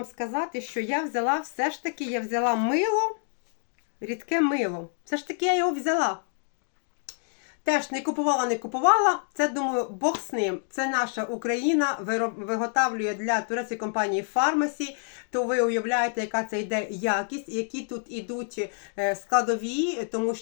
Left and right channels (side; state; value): right; silent; 57 dB below the other